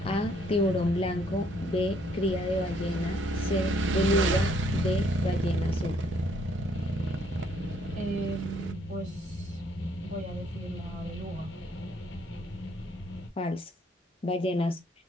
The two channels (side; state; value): both; normal; correlation 0.66